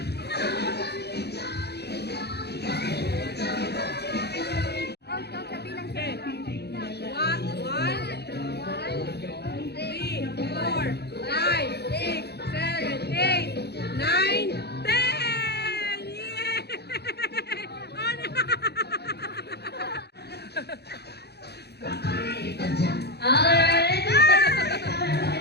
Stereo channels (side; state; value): right; late; 0.48 ms